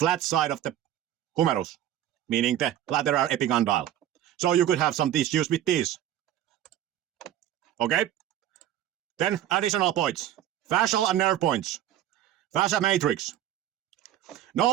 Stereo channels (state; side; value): quieter; left; 11.7 dB